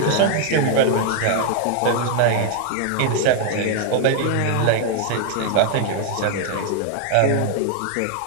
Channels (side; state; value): both; different; correlation 0.00